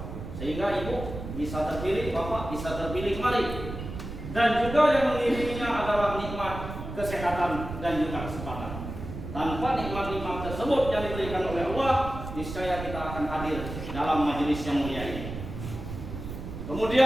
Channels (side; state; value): right; noise; rumble, 8 dB below the sound